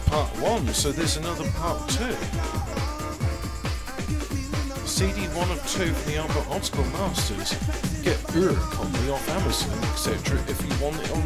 1, so there's another part 2. CD 1 of 2 for the Albert Optical Masters. Get your copy off Amazon, etc. if you want it on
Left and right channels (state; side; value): identical; both; correlation 1.00